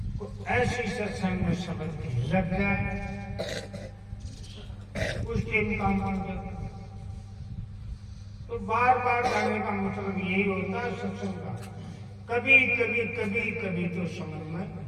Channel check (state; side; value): identical; both; correlation 1.00